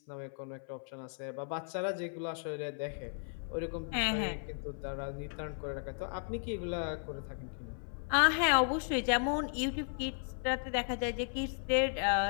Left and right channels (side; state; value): right; silent; 54 dB below the other